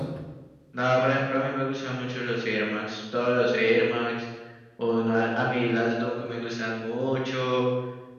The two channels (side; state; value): both; identical; correlation 1.00